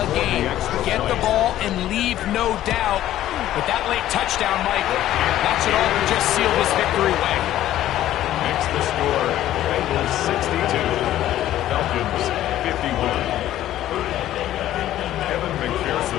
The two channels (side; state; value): right; quieter; 13.1 dB